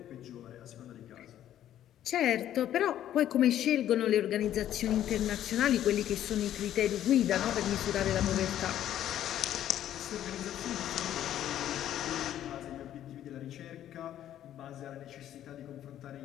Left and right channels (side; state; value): right; quieter; 11.6 dB